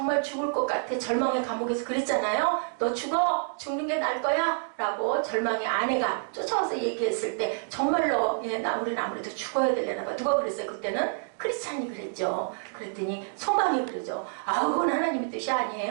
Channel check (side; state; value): left; silent; digital silence